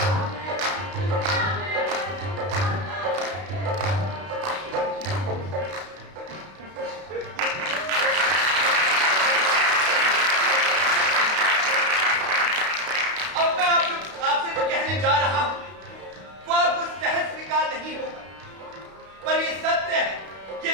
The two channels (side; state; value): left; late; 32 ms